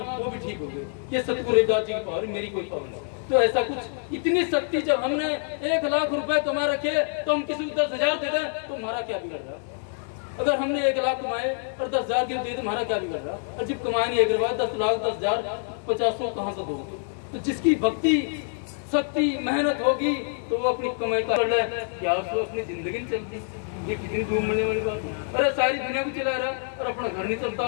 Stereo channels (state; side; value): silent; right; 61 dB below the other